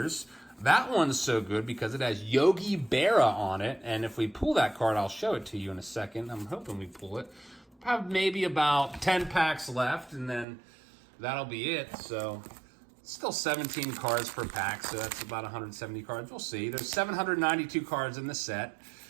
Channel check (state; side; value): drops out; left; at 10.5 s